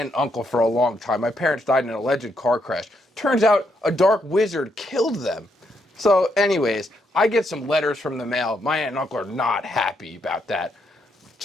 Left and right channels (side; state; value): both; normal; correlation 0.77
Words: and uncle for a long time. My parents died in an alleged car crash. Turns out a dark wizard killed them. So anyways, I get some letters from the mail. My aunt and uncle are not happy about that.